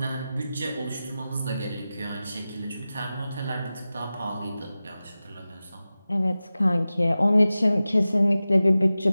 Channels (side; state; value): both; inverted; correlation -0.95